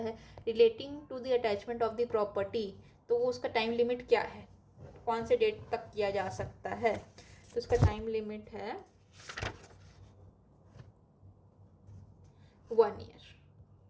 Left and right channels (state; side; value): identical; both; correlation 1.00